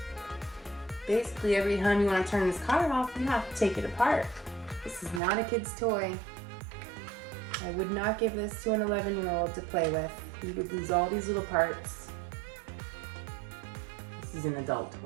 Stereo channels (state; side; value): drops out; left; at 5.2 s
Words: Basically, every time you want to turn this car off, you have to take it apart. This is not a kid's toy. I would not give this to an 11-year-old to play with. He would lose all these little parts. This is an adult